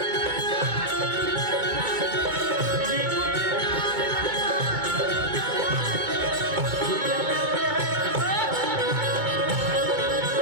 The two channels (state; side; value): late; left; 2.2 ms